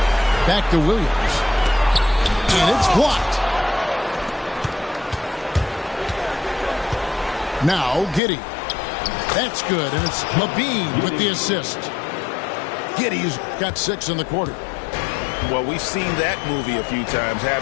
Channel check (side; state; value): right; drops out; at 8.2 s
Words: Back to Williams. And it's blocked. Now Giddey. That's good. And it's Levine with the assist. Giddey's got 6 in the quarter. Well, we've seen that movie a few times,